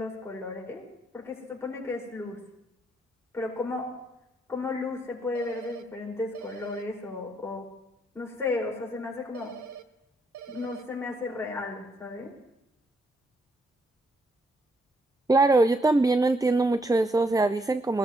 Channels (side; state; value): both; normal; correlation 0.75